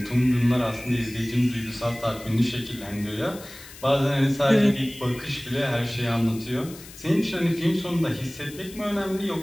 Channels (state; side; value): noise; left; hiss, 17 dB below the sound